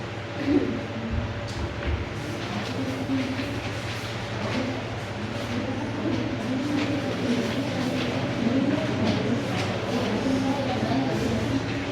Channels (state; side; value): identical; both; correlation 1.00